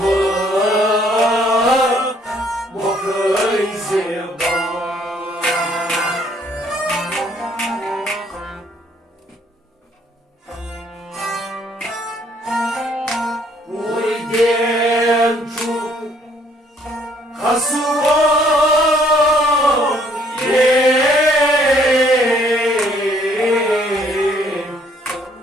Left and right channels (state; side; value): normal; both; correlation 0.64